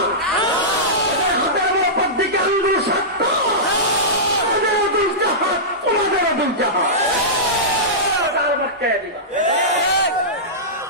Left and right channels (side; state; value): both; normal; correlation -0.15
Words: হাতের উপর দিকে আঙ্গুল 7টা, এদেরও 2টা হাত, তোমাদেরও 2টা হাত। গার মটকে দিবা,